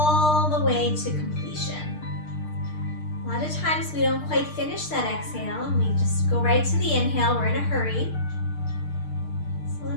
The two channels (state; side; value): late; right; 6.6 ms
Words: the way to completion. A lot of times we don't quite finish that exhale and we just go right to the inhale. We're in a hurry.